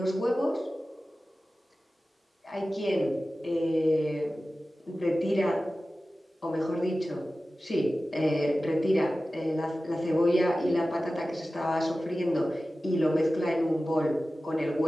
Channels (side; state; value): both; normal; correlation 0.95